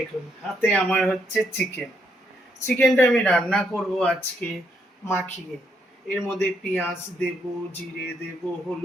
হাতে আমার হচ্ছে চিকেনটা আমি রান্না করব আজকে মাখিয়ে। এর মধ্যে পেঁয়াজ দেব, জিরে দেব,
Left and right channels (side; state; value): both; normal; correlation 0.75